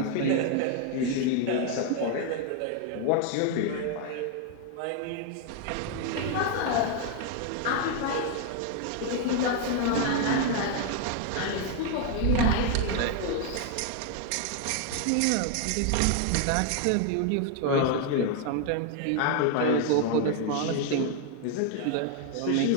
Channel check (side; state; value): both; different; correlation 0.00